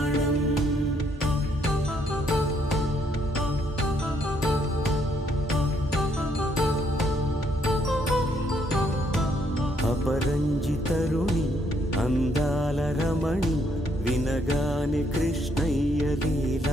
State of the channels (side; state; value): both; normal; correlation 0.71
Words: అపరంజి తరుణి అందాల రమణి వినగాని కృష్ణయ్య